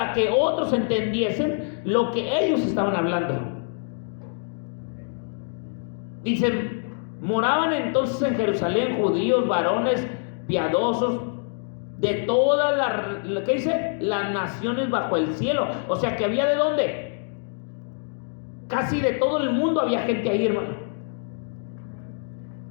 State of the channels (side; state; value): right; silent; 59 dB below the other